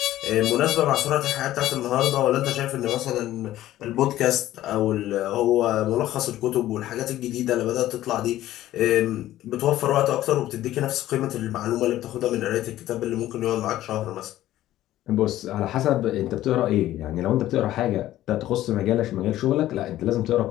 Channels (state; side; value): quieter; right; 14.1 dB